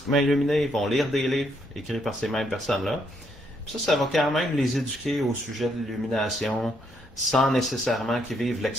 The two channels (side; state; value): both; normal; correlation 0.74